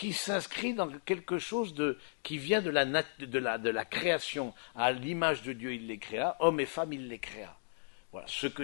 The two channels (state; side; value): silent; right; digital silence